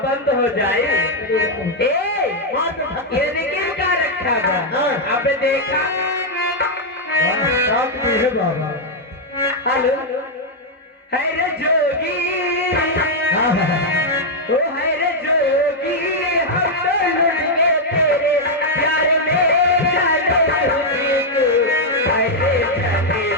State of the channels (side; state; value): both; normal; correlation -0.02